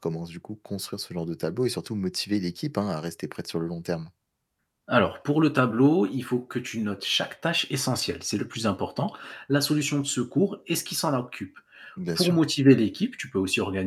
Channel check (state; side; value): identical; both; correlation 1.00